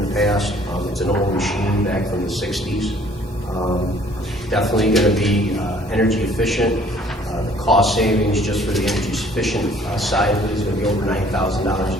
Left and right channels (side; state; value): both; normal; correlation 0.57